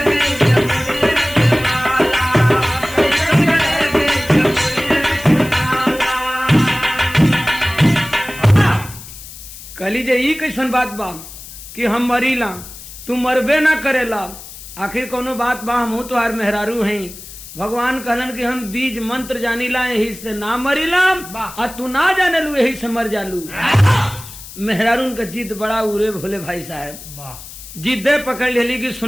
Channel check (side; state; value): left; noise; hiss, 15 dB below the sound